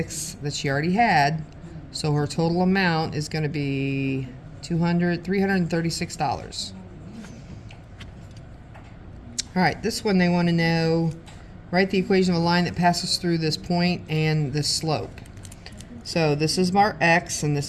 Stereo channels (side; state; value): both; identical; correlation 1.00